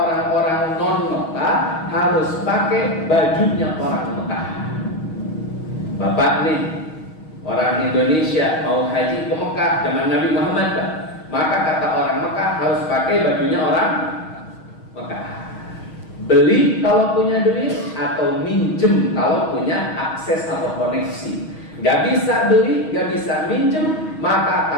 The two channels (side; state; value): right; late; 6.3 ms